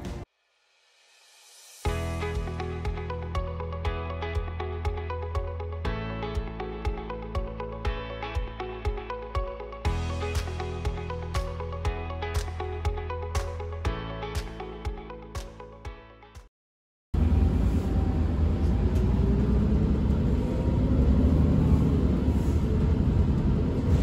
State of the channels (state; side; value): identical; both; correlation 1.00